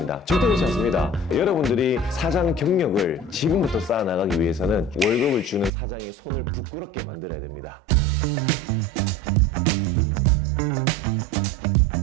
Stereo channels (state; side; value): drops out; left; at 5.7 s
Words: 절대 그렇지 않습니다. 여러분들이 사장 경력을 지금부터 쌓아나가기 위해서는 월급을 주는 사장의 손을 부끄럽게 만들어야 됩니다.